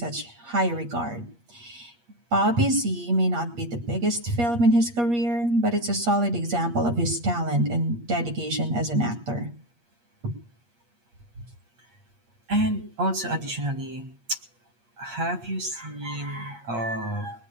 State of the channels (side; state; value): left; late; 8.4 ms